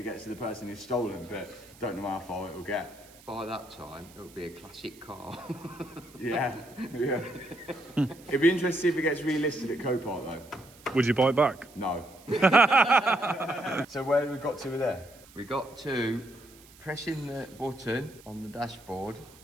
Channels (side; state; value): right; noise; hiss, 24 dB below the sound